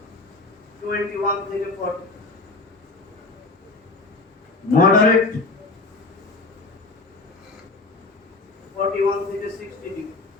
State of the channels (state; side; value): quieter; right; 3.5 dB